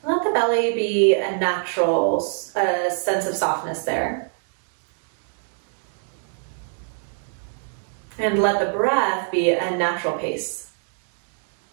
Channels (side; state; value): left; silent; 63 dB below the other